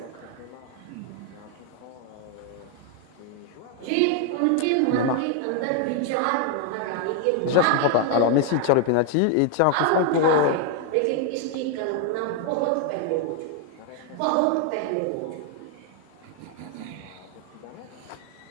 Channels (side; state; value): both; different; correlation 0.00